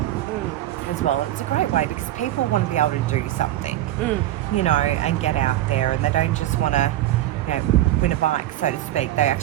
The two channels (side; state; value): left; quieter; 14.1 dB